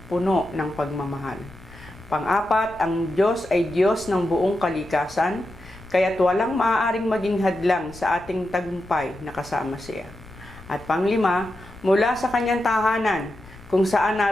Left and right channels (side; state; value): left; noise; rumble, 20 dB below the sound